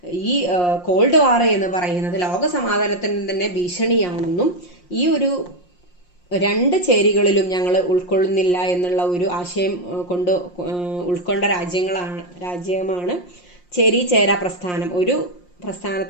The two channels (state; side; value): late; right; 5.6 ms